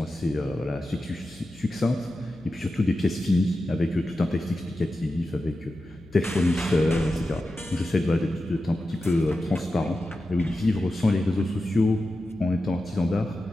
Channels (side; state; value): left; noise; hum, 23 dB below the sound